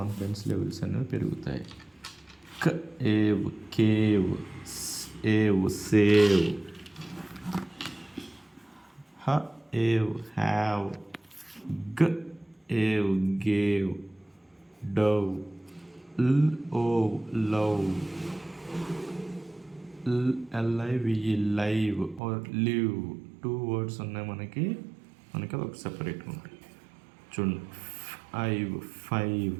లెవెల్స్ అనేవి పెరుగుతాయి. Cave, save, have, gave, Dove, love, live or live. 2 words ఉన్నాయి మనకి అది ఒక సెపరేట్గా ఉంటుంది. చూడండి, ఫైవ్,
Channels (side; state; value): left; drops out; at 22.2 s